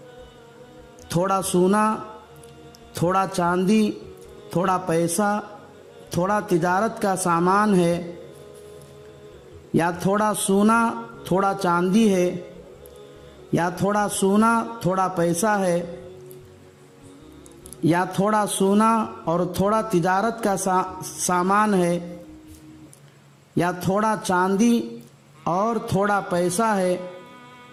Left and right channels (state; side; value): identical; both; correlation 1.00